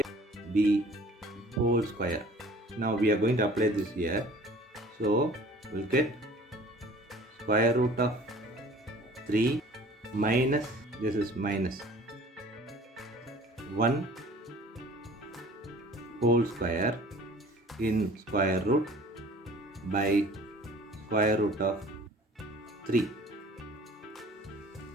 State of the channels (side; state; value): both; normal; correlation 0.48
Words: whole square. Now we are going to apply this here. So we'll get square root of 3 minus, this is minus 1 whole square in square root by square root of 3.